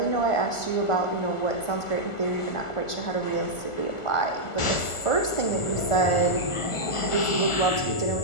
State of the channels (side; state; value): right; late; 1.4 ms